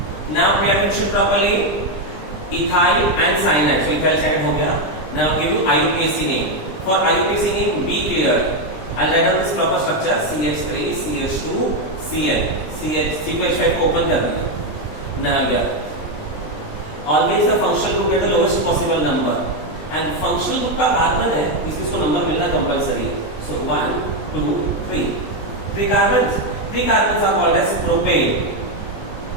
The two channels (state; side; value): late; right; 20 ms